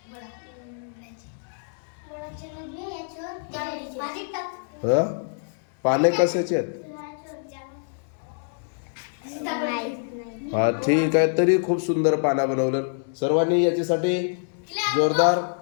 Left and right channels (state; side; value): silent; right; digital silence